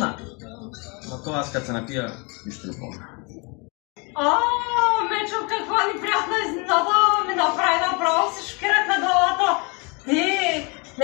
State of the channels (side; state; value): right; quieter; 30.8 dB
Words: Но това аз като се напия, нищо не помня. Мечо, каква неприятна изненада ми направи, направо се шокирах на главата. Ти